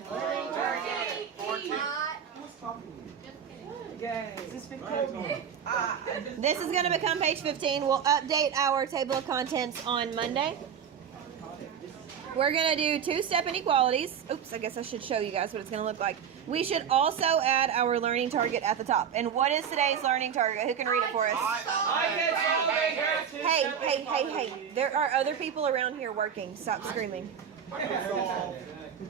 This is going to become page 15. We'll update our table of contents on Monday. We're going to do two-step inequalities. Oops, I guess I should show you guys what it's going to look like. We should also add our learning target at the top. And what is today's learning target? Who can read it for us? Hey. There are other people around here working. Stop screaming.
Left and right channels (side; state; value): left; quieter; 7.9 dB